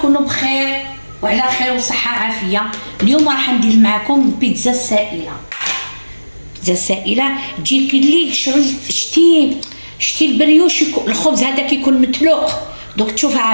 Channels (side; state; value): both; inverted; correlation -1.00